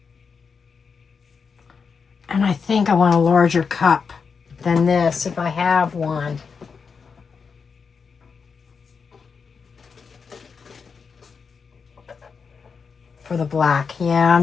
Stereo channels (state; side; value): quieter; right; 5.6 dB